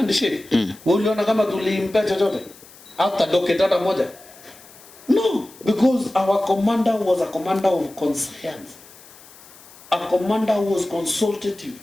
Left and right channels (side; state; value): left; noise; hiss, 22 dB below the sound